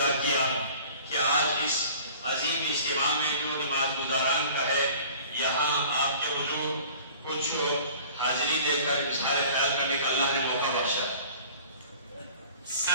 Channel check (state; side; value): inverted; both; correlation -0.46